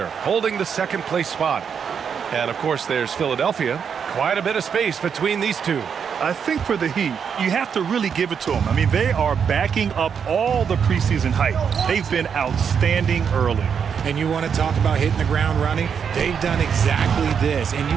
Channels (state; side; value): quieter; left; 7.1 dB